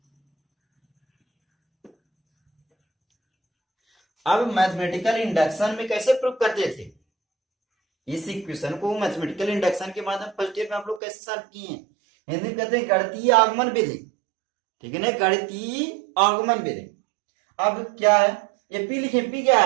अब मैथमेटिकल इंडक्शन में कैसे प्रूव करते थे, इस इक्वेशन को मैथमेटिकल इंडक्शन के माध्यम फर्स्ट ईयर में आप लोग कैसे सॉल्व किए हैं, हिंदी में कहते हैं गणितीय आगमन विधि, ठीक है ना, गणितीय आगमन विधि। अब क्या है, ये पी लिखे, पी क्या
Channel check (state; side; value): drops out; left; at 11.0 s